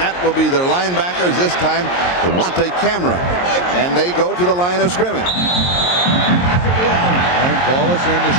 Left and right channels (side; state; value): right; late; 22 ms